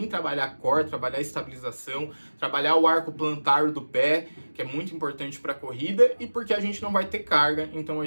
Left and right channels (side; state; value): both; inverted; correlation -1.00